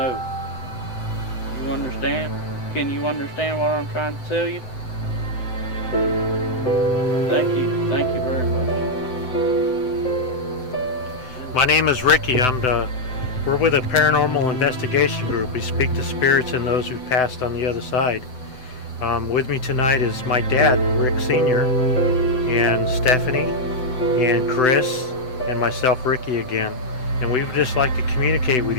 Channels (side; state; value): right; late; 7.9 ms